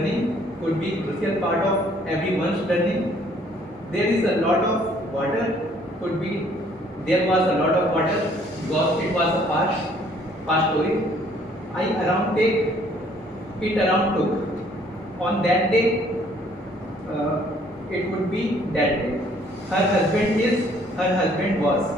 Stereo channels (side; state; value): both; normal; correlation 0.61